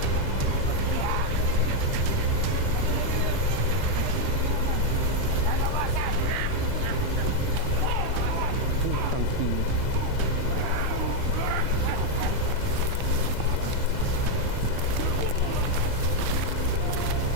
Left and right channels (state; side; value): different; both; correlation 0.01